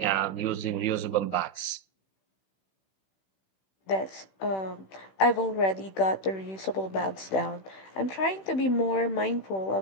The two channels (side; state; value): right; late; 16 ms